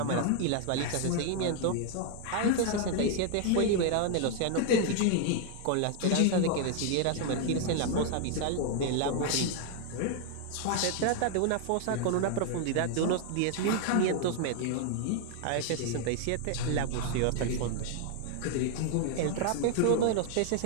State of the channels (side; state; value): both; different; correlation 0.00